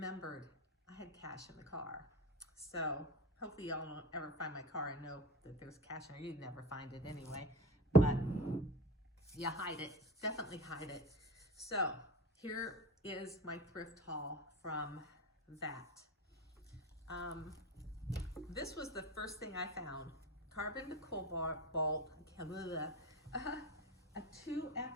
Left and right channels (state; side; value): normal; both; correlation 0.28